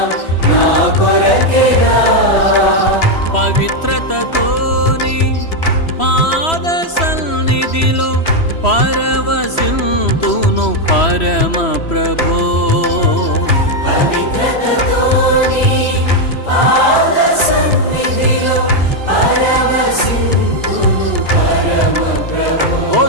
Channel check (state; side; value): late; right; 3.0 ms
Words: నా కొరకేగా. పవిత్రతతోని పాద సన్నిధిలో పరవశింతును పరమ ప్రభో. పవిత్రతతోని పాద సన్నిధిలో పరవశింతును పరమ ప్రభో.